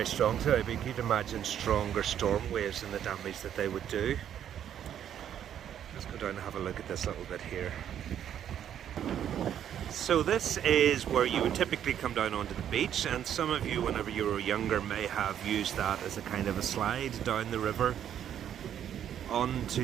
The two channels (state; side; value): quieter; left; 9.9 dB